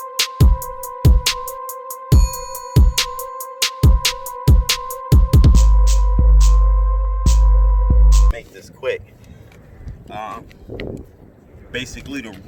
Make this quick. Basically the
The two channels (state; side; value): identical; both; correlation 1.00